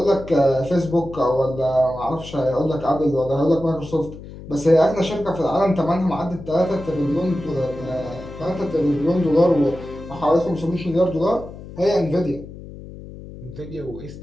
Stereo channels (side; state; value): left; noise; hum, 14 dB below the sound